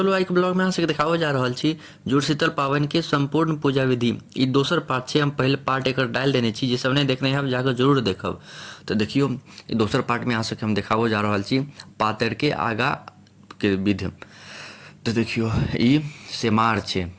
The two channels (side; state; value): both; identical; correlation 1.00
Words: आइ के ब्लॉग में अहाँ सबके देखाबऽ जा रहल छी जुड़शीतल पावनि के संपूर्ण पूजा विधि। ई दोसर पार्ट छै, हम पहले पार्ट एकर डालि देने छी, जे सब नहीं देखने हैं जाकर जरूर देखब। तो देखियो ई दोसर पार्ट में अहाँ सबके हम देखाबऽ जा रहल छी पातरि के आगा के विधि। तो देखियो ई सेमार छै,